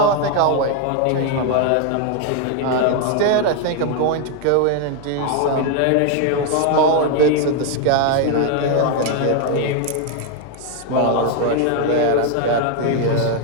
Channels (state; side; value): different; both; correlation 0.01